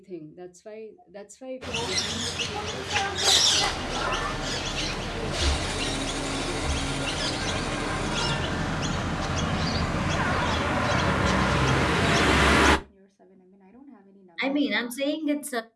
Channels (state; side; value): identical; both; correlation 1.00